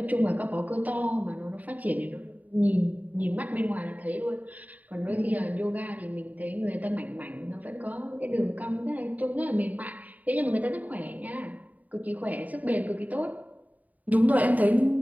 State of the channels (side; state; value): left; late; 0.075 ms